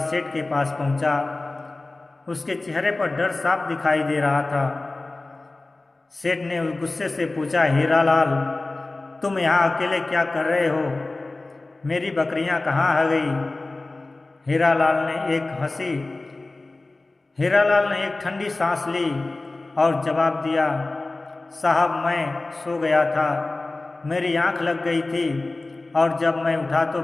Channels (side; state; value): right; quieter; 3.1 dB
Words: के पास पहुंचा। उसके चेहरे पर डर साफ दिखाई दे रहा था। सेठ ने गुस्से से पूछा, हीरालाल, तुम यहाँ अकेले क्या कर रहे हो? मेरी बकरियाँ कहाँ आ गई? हीरालाल ने एक ठंडी सांस ली और जवाब दिया, साहब, मैं सो गया था। मेरी आंख लग गई थी और जब मैं उठा तो